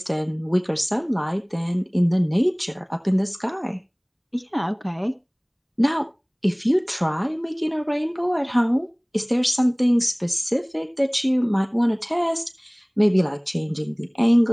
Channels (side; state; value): both; identical; correlation 1.00